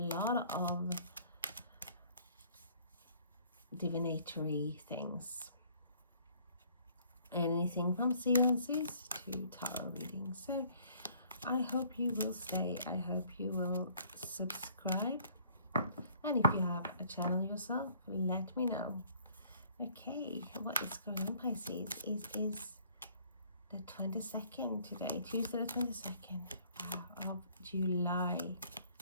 lot of divinatory things. Anything from seances to tarot readings. So I hope you will stay. I hope you will subscribe. And if you have a channel yourself, let me know. Okay, what is going on, Pisces? Is the 22nd today, Tuesday the 22nd of July.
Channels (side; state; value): both; inverted; correlation -0.59